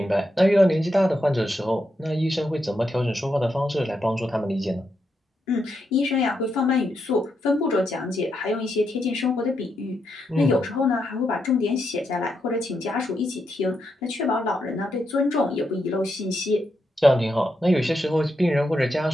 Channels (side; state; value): both; normal; correlation 0.82